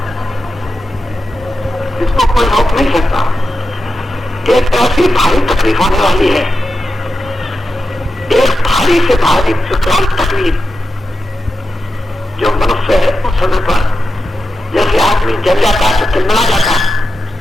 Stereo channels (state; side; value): normal; both; correlation 0.90